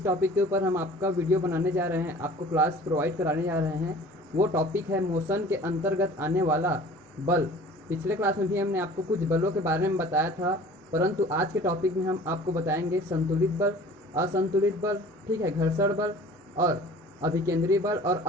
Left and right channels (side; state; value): both; normal; correlation 0.46